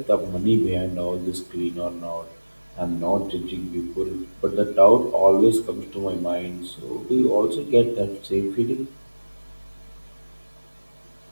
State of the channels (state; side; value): inverted; both; correlation -1.00